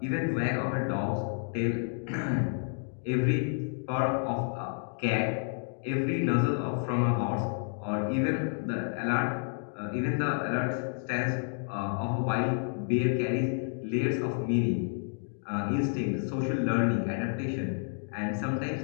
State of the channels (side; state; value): right; silent; 58 dB below the other